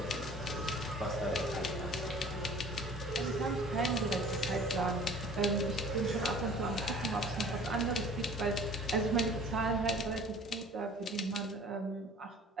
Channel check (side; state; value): both; normal; correlation 0.47